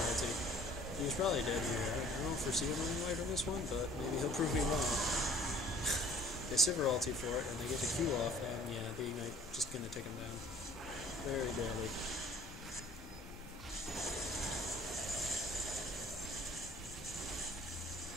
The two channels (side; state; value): both; normal; correlation 0.52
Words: ulti. He's probably dead here. I don't foresee him running away from this one, but maybe he'll prove me wrong. They Sivir ulti for it, and they get the Q off, and yeah, the Ignite just going to take him down. Very barely.